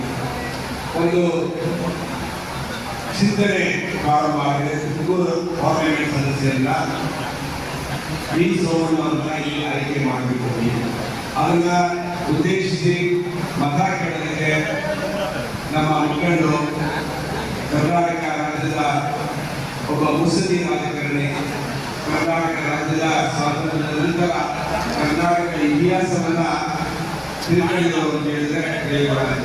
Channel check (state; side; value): identical; both; correlation 1.00